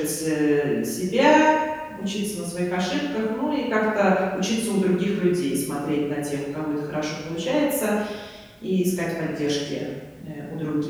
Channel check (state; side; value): identical; both; correlation 1.00